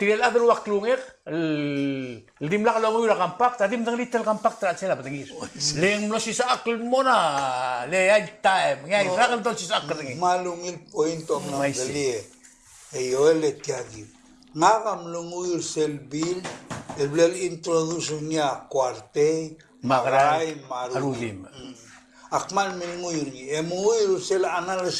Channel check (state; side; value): identical; both; correlation 1.00